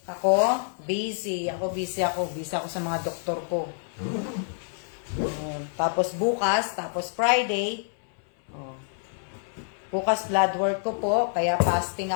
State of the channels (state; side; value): silent; right; 60 dB below the other